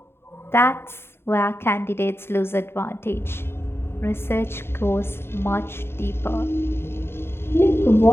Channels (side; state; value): right; late; 0.11 ms